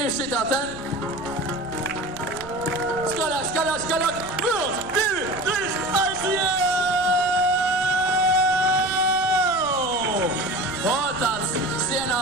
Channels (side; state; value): right; noise; rumble, 18 dB below the sound